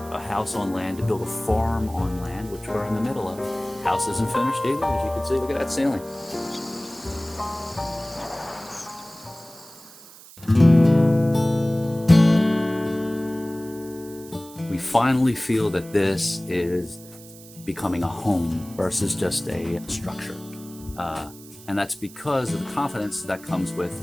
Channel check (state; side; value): noise; right; hiss, 19 dB below the sound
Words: a house on land, to build a farm on land, which we're in the middle of, house isn't finished either, as you can see. Look at that ceiling. We finally feel that this is becoming a home versus just a structure. And that's because of the confidence that comes